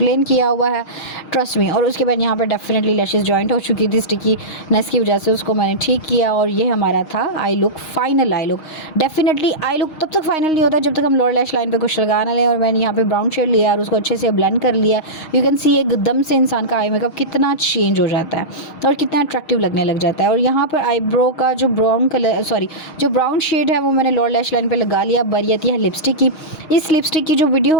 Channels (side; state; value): right; late; 6.4 ms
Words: किया हुआ है, ट्रस्ट मी। और उसके बाद यहाँ पर डेफिनेटली लैशेज़ जॉइंट हो चुकी थी स्टिकीनेस की वजह से, उसको मैंने ठीक किया और ये हमारा था I look, final I look. Definitely I look तब तक फाइनल नहीं होता जब तक हम लोअर लैश लाइन पे कुछ लगा ना लें। और मैंने यहाँ पे ब्राउन शेड लिया और उसको अच्छे से ब्लेंड कर लिया। यू कैन सी एकदम से इंसान का आई मेकअप कितना चेंज हो जाता है और कितना अट्रैक्टिव लगने लग जाता है। और यहाँ पर आईब्रो का जो ब्राउन शेड है वो मैंने लोअर लैश लाइन पे लगा लिया। बारी आती है लिपस्टिक की। इस लिपस्टिक की जो